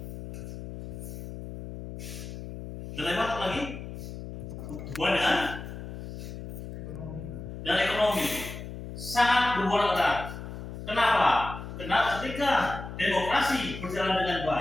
Dan apa lagi? Hubungan dengan ekonomi sangat berhubungan erat. Kenapa? Karena ketika demokrasi berjalan dengan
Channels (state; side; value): noise; left; hum, 10 dB below the sound